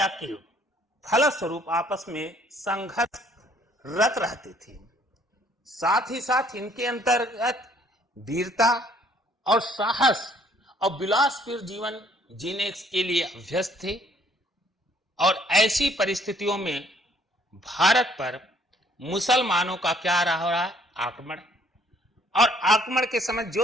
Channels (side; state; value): both; normal; correlation 0.62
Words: के फलस्वरूप आपस में संघर्षरत रहते थे। साथ ही साथ इनके अंतर्गत वीरता और साहस और विलासपूर्ण जीवन जीने के लिए अभ्यस्त थे। और ऐसी परिस्थितियों में भारत पर मुसलमानों का क्या रहा आक्रमण, और आक्रमण के समय